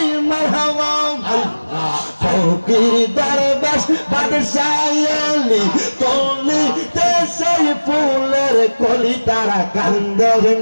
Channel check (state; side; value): inverted; both; correlation -1.00